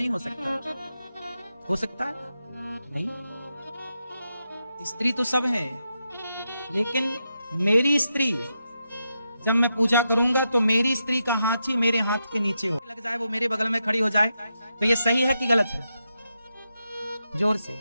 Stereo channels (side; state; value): both; inverted; correlation -0.86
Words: हो सकता। हो सकता है? नहीं। स्त्री तो सब है, लेकिन मेरी स्त्री जब मैं पूजा करूंगा तो मेरी स्त्री का हाथ ही मेरे हाथ के नीचे हो लग जाए, वो मेरे बगल में खड़ी हो जाए, तो ये सही है कि गलत है? जोर से।